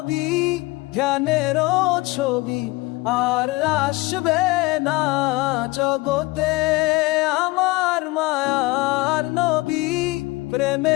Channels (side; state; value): right; quieter; 22.2 dB